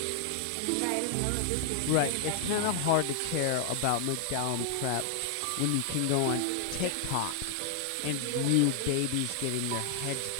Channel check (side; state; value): both; different; correlation 0.00